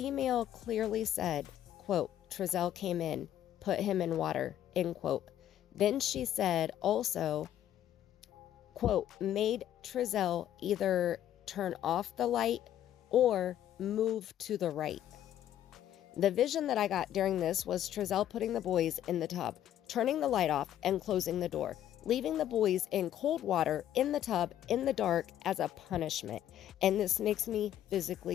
clearly said, quote, Trezell came in, put him in water, end quote. Then she said also, quote, made Trezell either turn off the light or move to the right. The vision that I got during this was Trezell putting the boys in the tub, turning the light off and closing the door, leaving the boys in cold water in the tub in the dark as a punishment. And this makes me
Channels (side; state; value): right; quieter; 11.4 dB